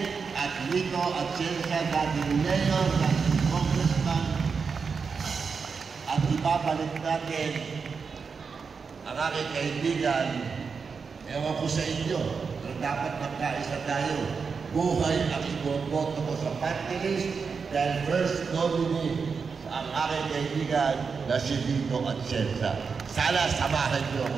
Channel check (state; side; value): quieter; left; 5.4 dB